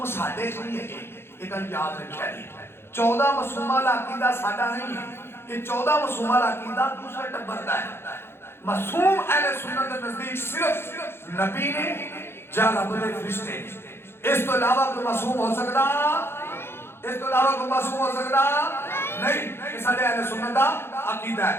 ساڈے چ نہیں ہے یہ گل یاد رکھیا جی 14 مسلمہ والا عقیدہ ساڈا نہیں ہے یہ 14 معصومہ عقیدہ دوسرے ٹبر دا ہے معصوم اہل سنت کے نزدیک صرف نبی نے یا رب دے فرشتے اس تو علاوہ کوئی معصوم ہو سکتا اس تو علاوہ کوئی معصوم ہو سکتا نہیں یہ سارے اہل سنت دا عقیدہ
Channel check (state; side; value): late; right; 0.11 ms